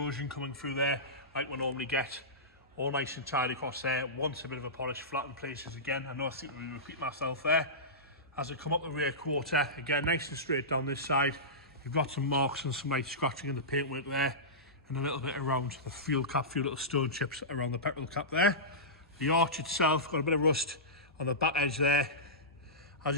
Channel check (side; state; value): both; normal; correlation -0.17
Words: coming through there, like we normally get. All nice and tidy across there. Wants a bit of a polish, flat in places again. I know I seem to be repeating myself there. As I come up the rear quarter, again, nice and straight down this side. You've got some marks and some light scratching in the paintwork there, and a little bit around the fuel cap, a few little stone chips around the petrol cap there. The arch itself got a bit of rust on the back edge there. As